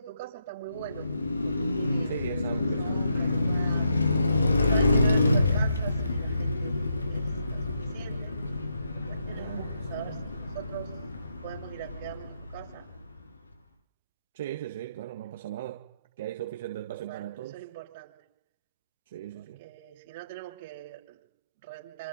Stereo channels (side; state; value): both; inverted; correlation -0.79